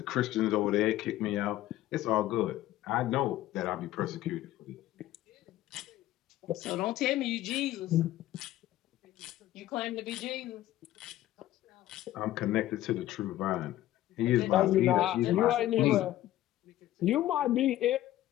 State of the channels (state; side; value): quieter; right; 14.3 dB